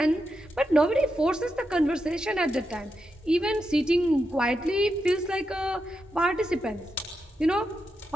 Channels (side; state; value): both; normal; correlation 0.86